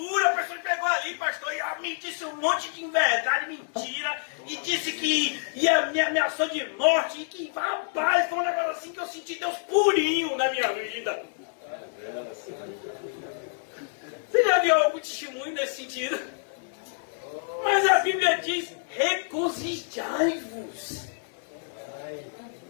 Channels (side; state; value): right; silent; digital silence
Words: A pessoa pegou ali, pastor, e me disse um monte de inverdade, mentira, e disse que me ameaçou de morte, e que, rapaz, foi um negócio assim que eu senti Deus purinho na minha vida. Você já viu algum testemunho nesse sentido? Mas a Bíblia diz, regozijai-vos.